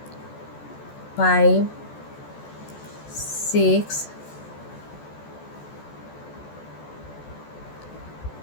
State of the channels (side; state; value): right; late; 14 ms